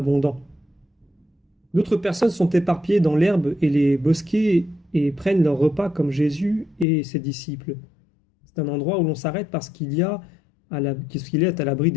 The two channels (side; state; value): right; drops out; at 6.9 s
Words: D'autres personnes sont éparpillées dans l'herbe et les bosquets et prennent leur repas comme Jésus et ses disciples. C'est un endroit où l'on s'arrête parce qu'il est à l'abri